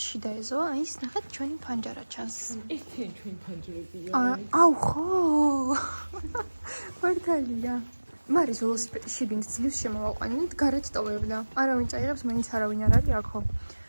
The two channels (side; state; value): both; inverted; correlation -1.00